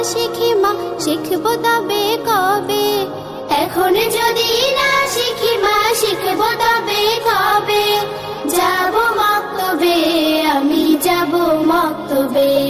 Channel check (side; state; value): both; identical; correlation 1.00